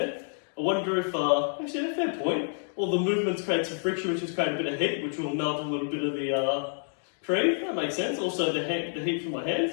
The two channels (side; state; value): right; silent; digital silence